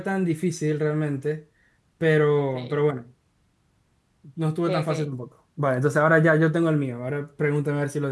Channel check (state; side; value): identical; both; correlation 1.00